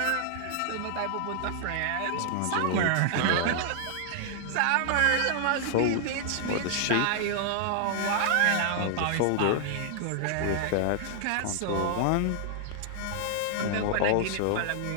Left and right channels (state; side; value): different; both; correlation 0.00